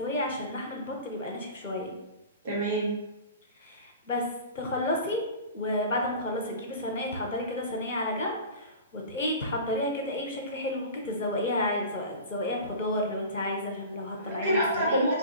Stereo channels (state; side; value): inverted; both; correlation -0.35